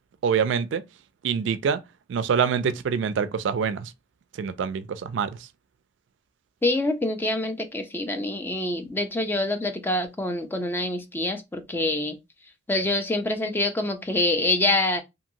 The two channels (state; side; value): normal; both; correlation 0.18